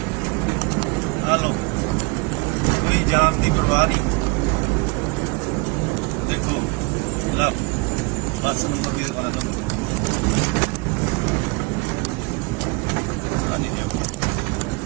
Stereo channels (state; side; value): quieter; left; 28.5 dB